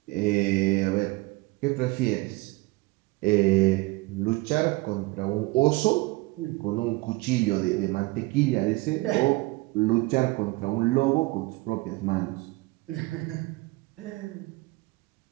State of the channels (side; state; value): left; quieter; 23.0 dB